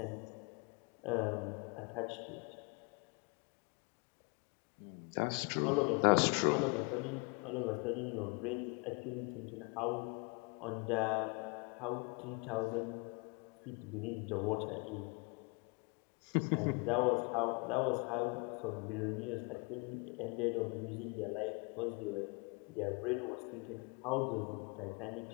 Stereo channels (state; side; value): quieter; right; 31.8 dB